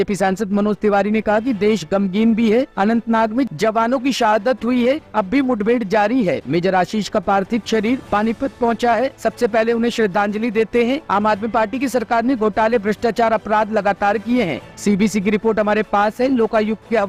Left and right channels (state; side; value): identical; both; correlation 1.00